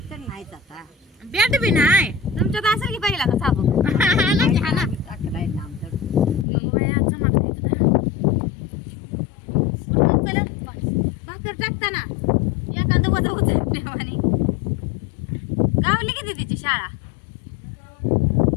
तर नाहीच आता बॅट बी नाही तुमच्यात असेल की पहिला का साबू हाना की हाना टाकलाय ना आमचं भाकर टाकताना एखादं वजा उचलल्यावानी गावली किती तिची शाळा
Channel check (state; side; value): drops out; right; at 6.5 s